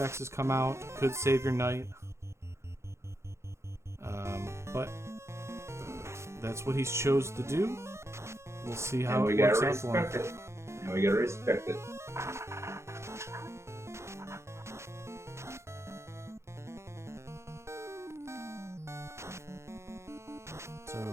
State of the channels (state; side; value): late; left; 0.13 ms